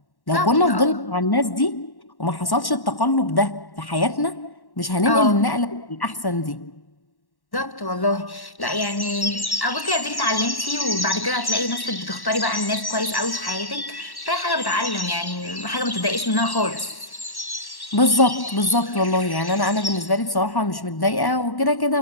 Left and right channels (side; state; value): right; late; 1.1 ms